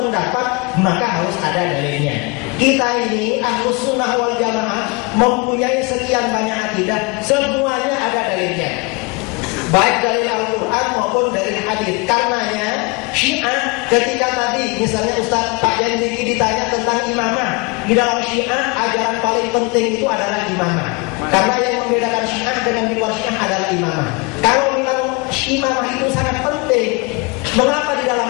maka harus ada dalilnya. Kita ini Ahlus Sunnah wal Jamaah mempunyai sekian banyak akidah, semuanya ada dalilnya. Baik dalil Al-Quran maupun dalil hadis. Karenanya Syiah ketika tadi misalnya Ustaz Pak Yandiki ditanya tentang imamah, di dalam Syiah ajaran paling penting itu adalah imamah. Karena yang membedakan Syiah dengan di luar Syiah adalah imamah. Kalau memang imamah itu sangat penting, mengapa di dalam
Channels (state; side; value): quieter; right; 28.3 dB